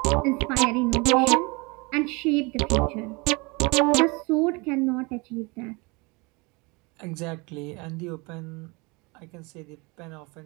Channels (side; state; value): left; quieter; 27.5 dB